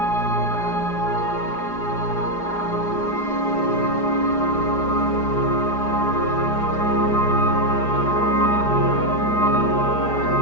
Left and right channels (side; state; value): right; late; 4.9 ms